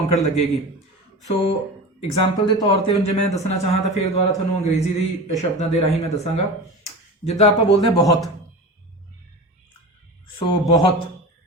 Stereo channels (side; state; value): both; normal; correlation 0.30